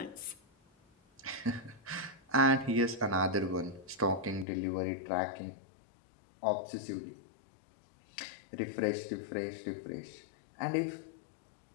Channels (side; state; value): right; drops out; at 4.5 s